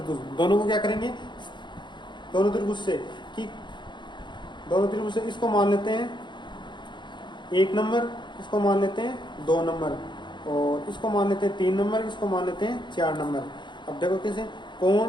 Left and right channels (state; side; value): late; right; 0.22 ms